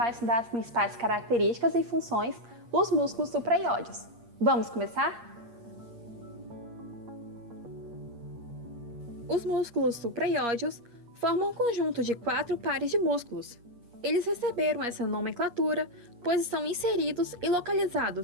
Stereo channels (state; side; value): late; left; 8.5 ms